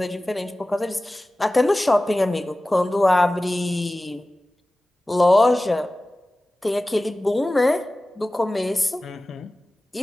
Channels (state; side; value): normal; both; correlation 0.97